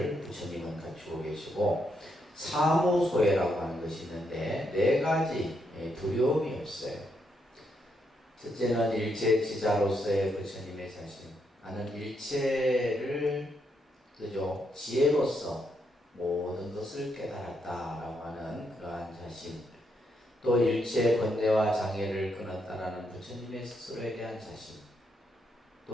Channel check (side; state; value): both; normal; correlation 0.79